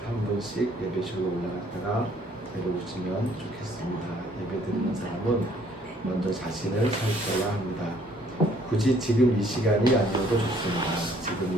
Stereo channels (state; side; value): normal; both; correlation 0.61